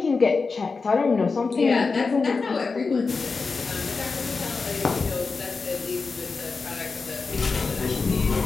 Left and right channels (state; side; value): quieter; right; 4.4 dB